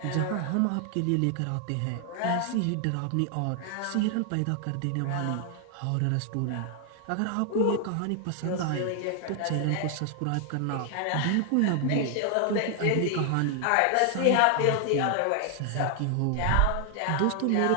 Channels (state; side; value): different; both; correlation 0.00